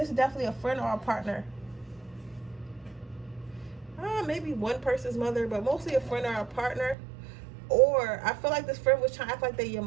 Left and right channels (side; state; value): left; drops out; at 7.0 s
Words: is definitely a friend or a partner. Maybe one person's mother, but mostly a friend or a partner. Or I feel like this friend was trying to act like they your